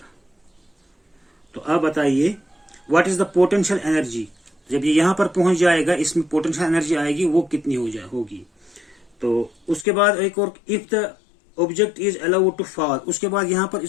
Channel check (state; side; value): drops out; right; at 9.9 s